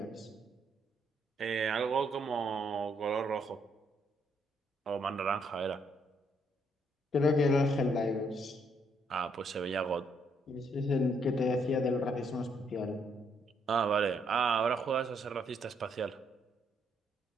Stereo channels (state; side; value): normal; both; correlation 0.72